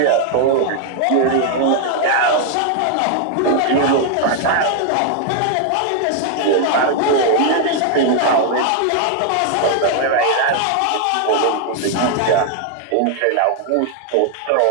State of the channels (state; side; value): different; both; correlation 0.00